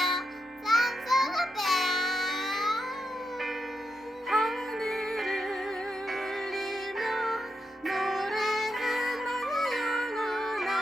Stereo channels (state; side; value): normal; both; correlation 0.85